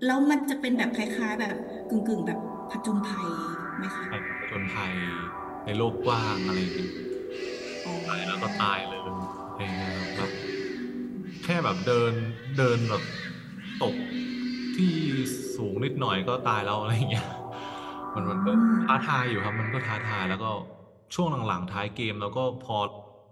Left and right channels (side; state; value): both; identical; correlation 1.00